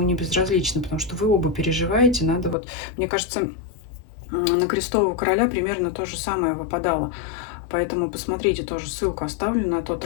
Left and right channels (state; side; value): drops out; right; at 2.6 s